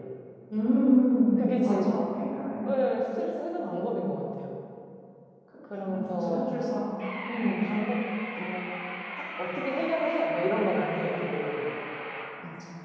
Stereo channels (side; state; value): both; identical; correlation 1.00